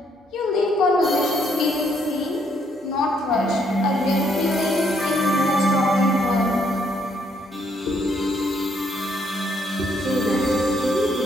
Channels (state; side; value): normal; both; correlation 0.71